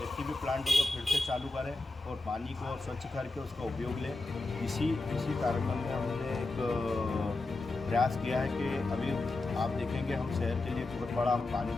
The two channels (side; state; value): right; quieter; 3.2 dB